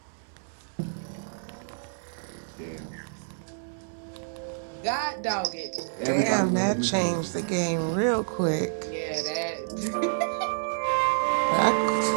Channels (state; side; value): silent; left; 59 dB below the other